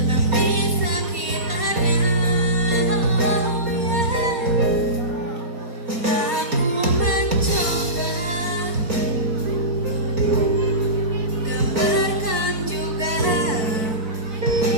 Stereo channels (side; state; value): left; late; 4.2 ms